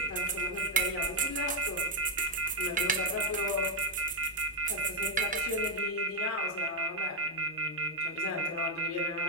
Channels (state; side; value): normal; both; correlation 0.01